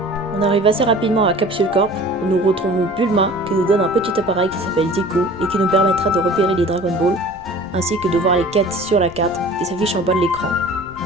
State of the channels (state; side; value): noise; left; rumble, 20 dB below the sound